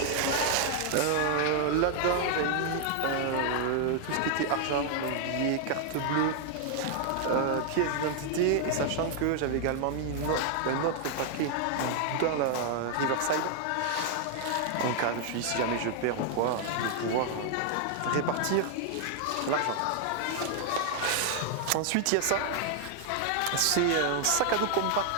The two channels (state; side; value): different; both; correlation 0.00